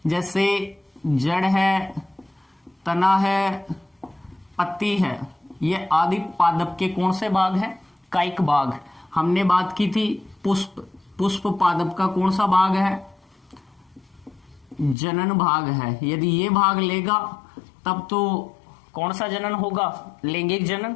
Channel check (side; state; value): right; drops out; at 15.0 s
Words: जैसे जड़ है, तना है, पत्ती है, ये आदि पादप के कौन से भाग हैं? कायिक भाग। हमने बात की थी पुष्प, पुष्प पादप का कौन सा भाग है? जनन भाग है। यदि ये भाग लेगा तब तो कौन सा जनन होगा? लैंगिक जनन।